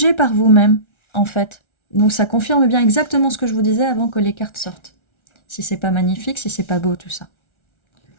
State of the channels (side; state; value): right; late; 1.3 ms